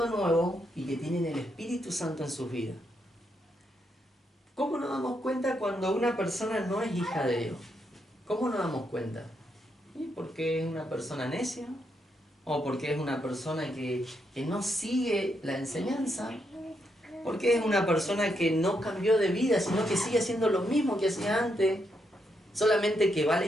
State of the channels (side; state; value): both; normal; correlation 0.80